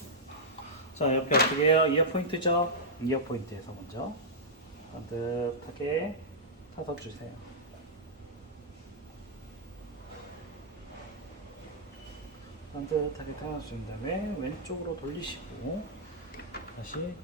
자, 옆에 어떻게 해요? 이어 포인트죠? 이어 포인트에서 먼저 반듯하게 타서 주세요. 반듯하게 타서 준 다음에 왼쪽으로 돌리시고 다시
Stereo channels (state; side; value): normal; both; correlation -0.09